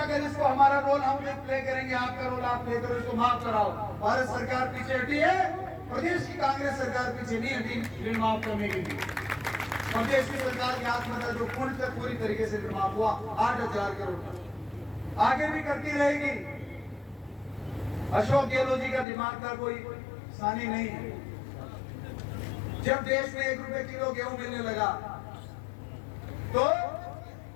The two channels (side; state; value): right; drops out; at 19.1 s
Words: इसको हमारा रोल हम प्ले करेंगे, आपका रोल आप प्ले करो, इसको माफ कराओ। भारत सरकार पीछे हटी है, प्रदेश की कांग्रेस सरकार पीछे नहीं हटी ऋण माफ करने के लिए। प्रदेश की सरकार के हाथ में जो पूर्ण से पूरी तरीके से ऋण माफ हुआ 8,000 करोड़, आगे भी करती रहेगी। अशोक गहलोत जी का दिमाग का कोई सानी नहीं है। जब देश में 1 रुपए किलो गेहूं मिलने लगा तो